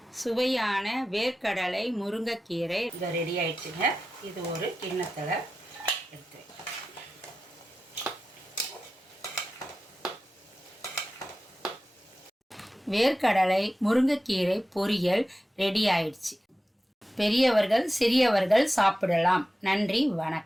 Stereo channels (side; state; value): both; normal; correlation 0.93